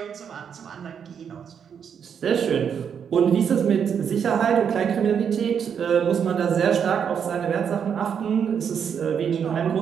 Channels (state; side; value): quieter; left; 7.6 dB